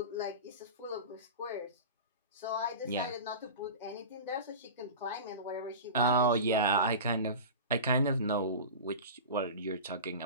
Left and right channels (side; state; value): both; inverted; correlation -0.31